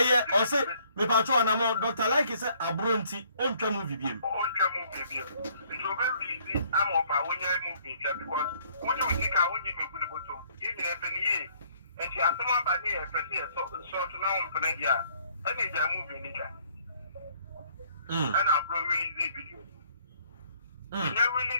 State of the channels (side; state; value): both; inverted; correlation -0.63